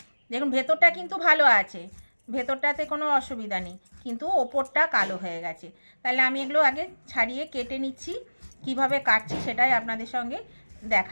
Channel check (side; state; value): both; inverted; correlation -1.00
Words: দেখুন ভেতরটা কিন্তু ভালো আছে, ভেতরটাতে কোনো অসুবিধা নেই, কিন্তু ওপরটা কালো হয়ে গেছে। তাহলে আমি এগুলো আগে ছাড়িয়ে কেটে নিচ্ছি। কিভাবে কাটছি সেটাই আপনাদের সঙ্গে